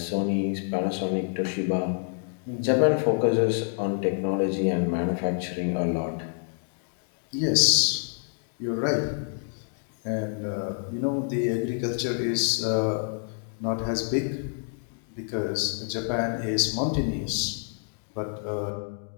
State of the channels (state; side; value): silent; right; 60 dB below the other